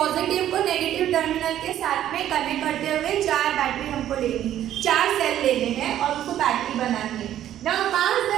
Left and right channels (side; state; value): left; quieter; 11.7 dB